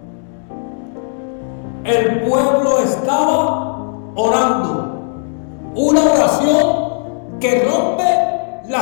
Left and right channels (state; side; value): silent; right; 69 dB below the other